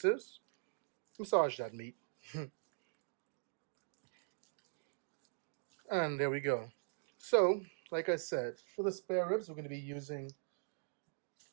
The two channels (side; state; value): left; silent; digital silence